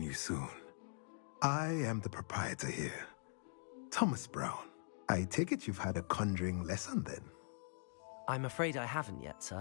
you soon. I am the proprietor here, Thomas Brown. I take it you've had a conjuring lesson then? I'm afraid I haven't yet,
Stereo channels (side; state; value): right; silent; digital silence